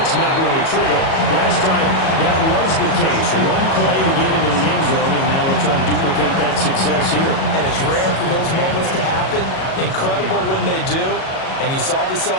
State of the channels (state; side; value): late; right; 37 ms